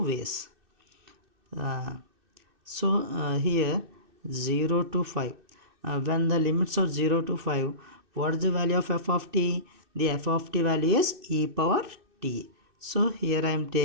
ways. So here 0 to 5, when the limits are 0 to 5, what is the value of f of t? The f of t value is e power t. So here I am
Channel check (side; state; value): left; late; 2.6 ms